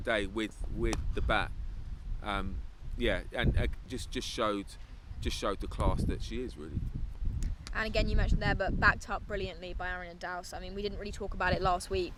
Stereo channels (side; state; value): both; identical; correlation 1.00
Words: with the bat. And just showed the class that she is, really. And again, you mentioned there, but backed up brilliantly by Aaron and Dowse. I mean, we didn't really talk about it last week,